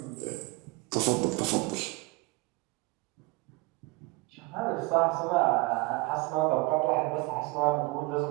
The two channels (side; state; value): left; quieter; 24.5 dB